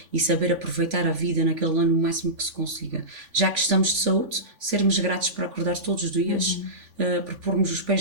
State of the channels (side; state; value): left; late; 3.5 ms